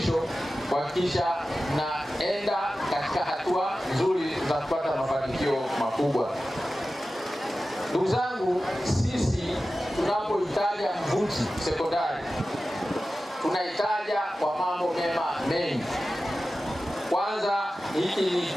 kuhakikisha naenda katika hatua nzuri za kupata mafanikio makubwa. Ndugu zangu, sisi tunapoitaja Mvuti sekondari tunaitaja kwa mambo mema mengi. Kwanza, hiki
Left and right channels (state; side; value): normal; both; correlation 0.94